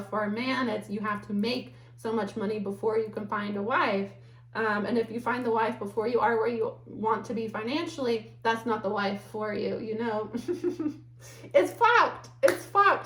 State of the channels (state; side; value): identical; both; correlation 1.00